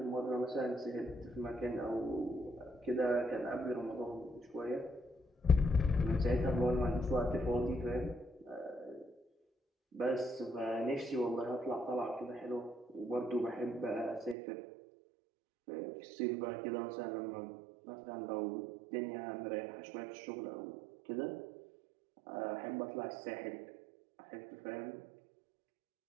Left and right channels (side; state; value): left; drops out; at 14.4 s